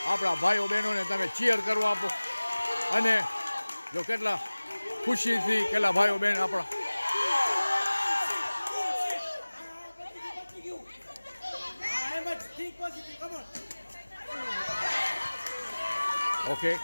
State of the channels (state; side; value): inverted; both; correlation -1.00